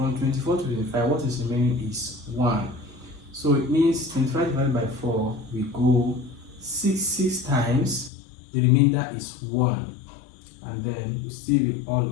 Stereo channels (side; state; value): right; drops out; at 8.1 s